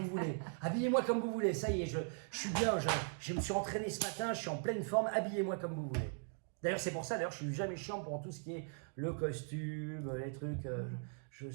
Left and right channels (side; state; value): left; silent; 52 dB below the other